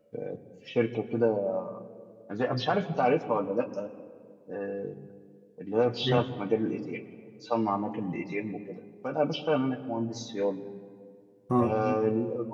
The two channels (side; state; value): both; identical; correlation 1.00